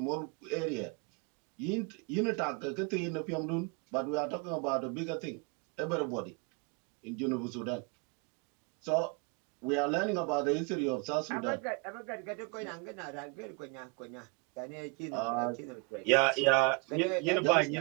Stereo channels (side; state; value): left; quieter; 31.9 dB